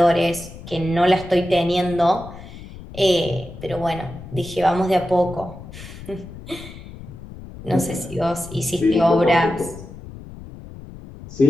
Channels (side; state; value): left; noise; rumble, 15 dB below the sound